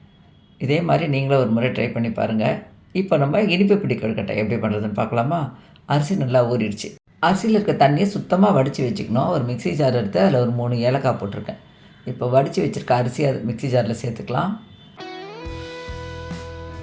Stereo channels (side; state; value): both; identical; correlation 1.00